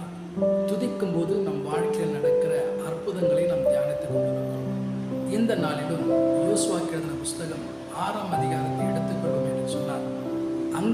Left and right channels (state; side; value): identical; both; correlation 1.00